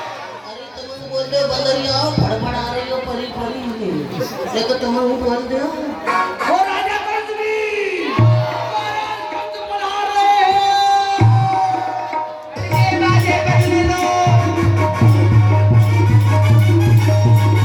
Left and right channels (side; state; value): both; identical; correlation 1.00